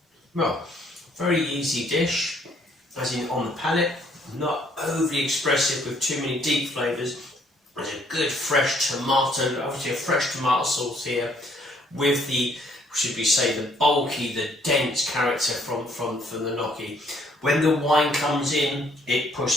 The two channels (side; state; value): both; normal; correlation 0.65